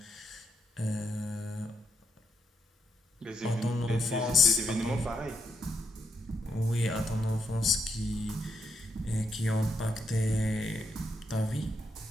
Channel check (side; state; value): both; normal; correlation 0.79